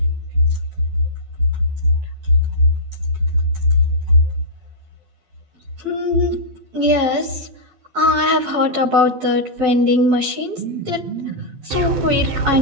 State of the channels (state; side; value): late; left; 12 ms